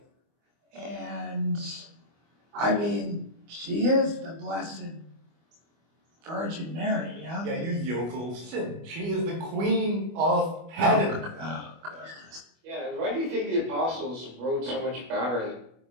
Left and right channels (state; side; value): late; left; 25 ms